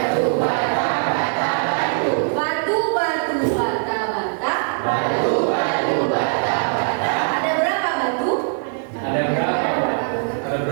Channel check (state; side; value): silent; left; 65 dB below the other